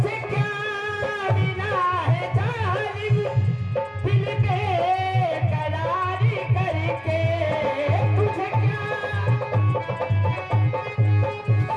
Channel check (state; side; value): identical; both; correlation 1.00